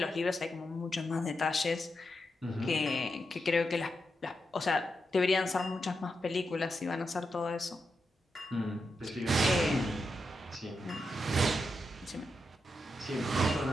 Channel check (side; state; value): both; normal; correlation 0.86